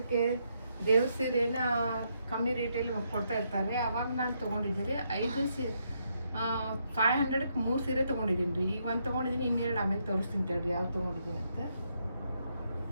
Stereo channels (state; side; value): inverted; both; correlation -0.77